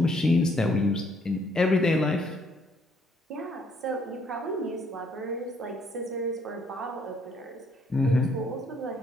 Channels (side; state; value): both; normal; correlation 0.67